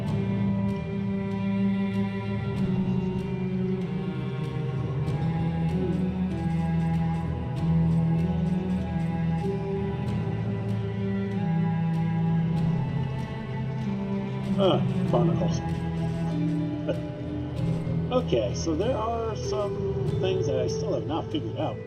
Barnacles. Okay, so there are some things that I still have not figured out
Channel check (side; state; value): both; identical; correlation 1.00